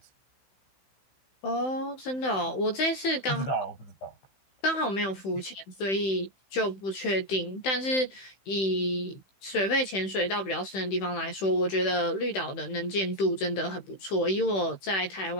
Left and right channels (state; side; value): late; right; 15 ms